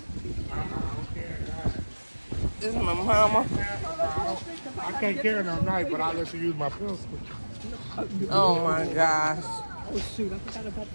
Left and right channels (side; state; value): both; inverted; correlation -1.00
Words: This is my mama. I can't carry no knife, but I'll let you use my pistol. Oh my gosh. Oh shoot, I forgot about